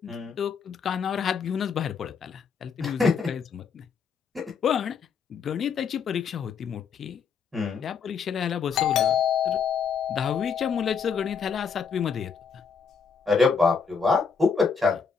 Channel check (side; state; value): right; quieter; 6.0 dB